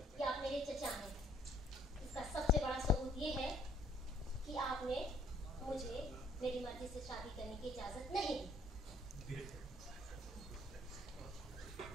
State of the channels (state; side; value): normal; both; correlation 0.62